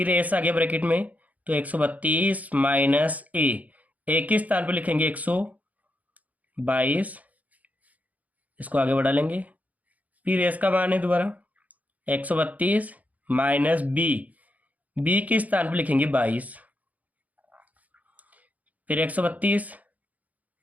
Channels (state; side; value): late; left; 0.075 ms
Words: एस आ गया ब्रैकेट में तो 132 माइनस ए के स्थान पर लिखेंगे 122, इसको आगे बढ़ा लेंगे। फिर एस का मान है दोबारा 132 माइनस बी के स्थान पर लिखेंगे 22, फिर 132